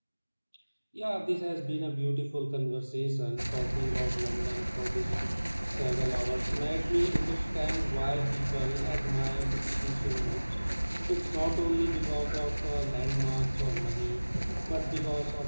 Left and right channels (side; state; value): both; inverted; correlation -1.00